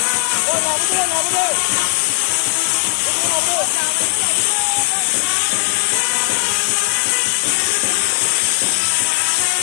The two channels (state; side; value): silent; right; digital silence